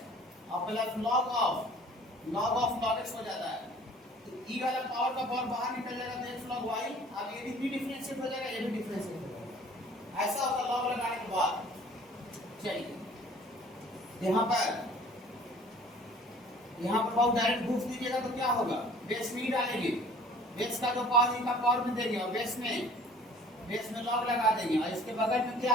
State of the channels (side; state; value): both; normal; correlation 0.51